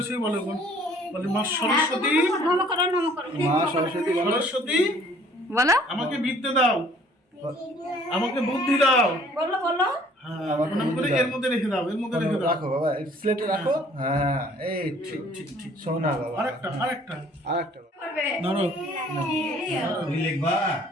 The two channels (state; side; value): normal; both; correlation 0.56